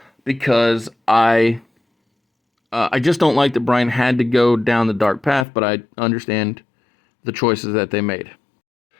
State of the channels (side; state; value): right; drops out; at 5.5 s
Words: because I just don't like that Brian had to go down the dark path, but I understand the choices that they made.